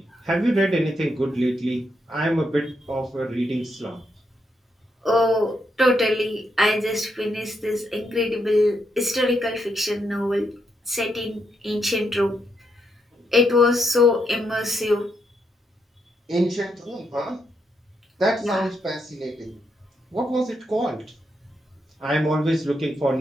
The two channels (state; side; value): normal; both; correlation 0.80